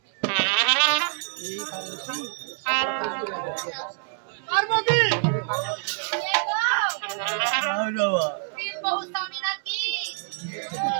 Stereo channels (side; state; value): left; silent; 59 dB below the other